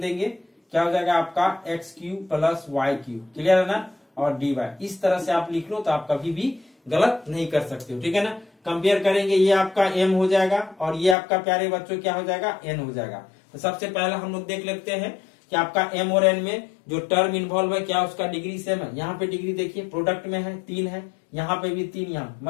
क्या हो जाएगा आपका x³ प्लस y³। क्लियर है ना। और dy इस तरह से आप लिख लो तो आप कभी भी गलत नहीं कर सकते हो। ठीक है ना। कंपेयर करेंगे, ये आपका m हो जाएगा और ये आपका प्यारे बच्चों क्या हो जाएगा n हो जाएगा। तो सबसे पहले हम लोग देख लेते हैं कि आपका m और n में जो टर्म इन्वॉल्व है क्या उसका डिग्री सेम है। यहाँ पे डिग्री देखिए प्रोडक्ट में है 3 है, यहाँ पे भी 3 यहाँ,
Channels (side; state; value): right; drops out; at 11.2 s